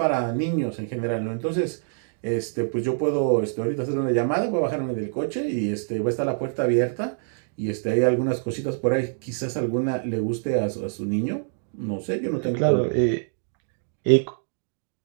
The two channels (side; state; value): left; silent; digital silence